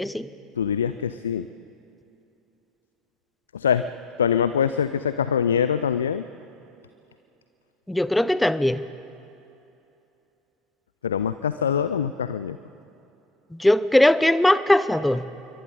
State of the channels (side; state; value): right; quieter; 3.1 dB